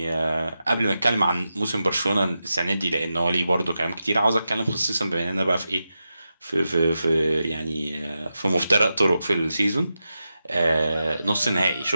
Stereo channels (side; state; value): both; inverted; correlation -0.90